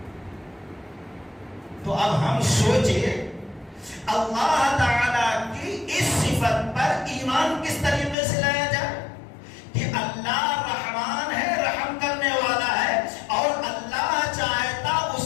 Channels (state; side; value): drops out; right; at 8.2 s